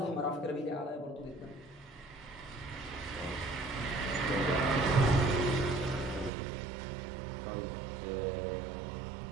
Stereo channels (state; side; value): drops out; left; at 6.3 s